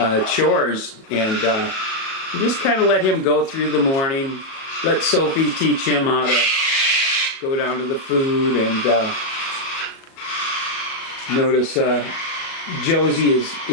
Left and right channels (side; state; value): right; late; 37 ms